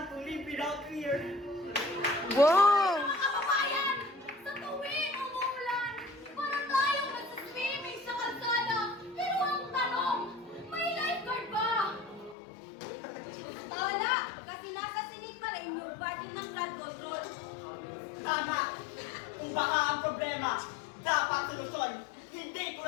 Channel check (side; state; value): right; drops out; at 12.4 s